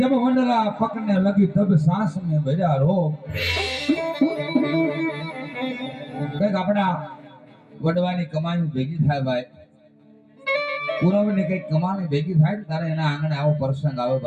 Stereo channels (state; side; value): identical; both; correlation 1.00